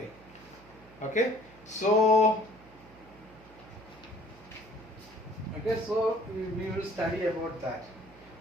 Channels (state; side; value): noise; right; hum, 24 dB below the sound